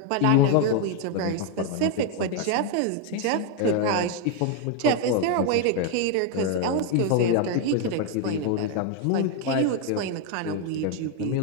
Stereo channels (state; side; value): different; both; correlation 0.01